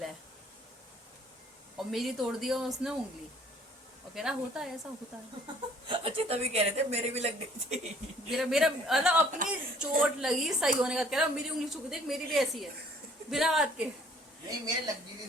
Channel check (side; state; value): both; normal; correlation 0.56